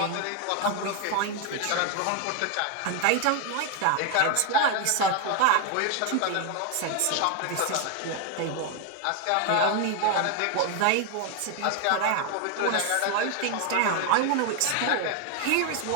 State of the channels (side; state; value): both; different; correlation 0.01